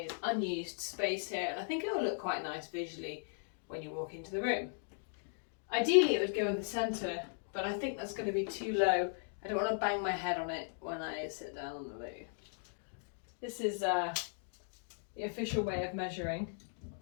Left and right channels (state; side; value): silent; right; digital silence